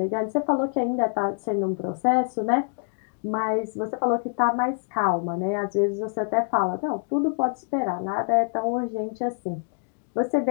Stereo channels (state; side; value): silent; right; 56 dB below the other